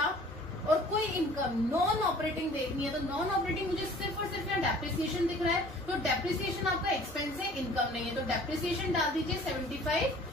और कोई इनकम नॉन ऑपरेटिंग देखनी है, तो नॉन ऑपरेटिंग मुझे सिर्फ और सिर्फ यहाँ डेप्रिसिएशन दिख रहा है, तो डेप्रिसिएशन आपका एक्सपेंस है, इनकम नहीं है, तो डेप्रिसिएशन डाल दीजिए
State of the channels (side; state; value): both; normal; correlation 0.50